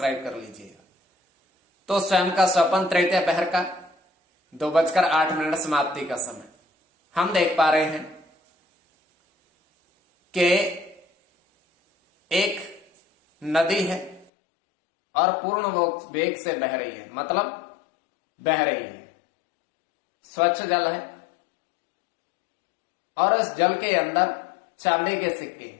कर लीजिएगा। तो स्वयं का स्वप्न तृतीय पहर का 2:08 समाप्ति का समय हम देख पा रहे हैं कि एक नदी है और पूर्ण वेग से बह रही है, मतलब बह रही है, स्वच्छ जल है, और इस जल के अंदर चांदी के सिक्के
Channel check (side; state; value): right; drops out; at 14.3 s